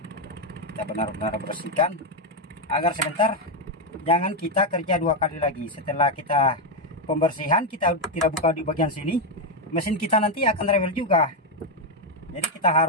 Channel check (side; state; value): both; normal; correlation 0.05